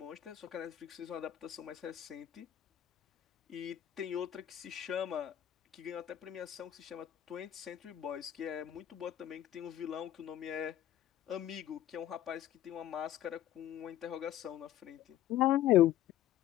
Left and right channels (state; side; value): quieter; right; 12.1 dB